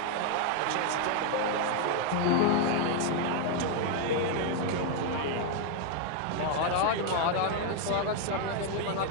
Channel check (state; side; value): different; both; correlation 0.00